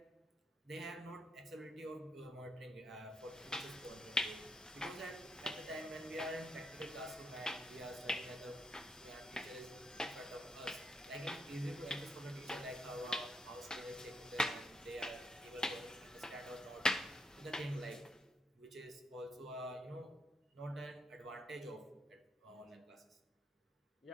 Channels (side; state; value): both; normal; correlation 0.79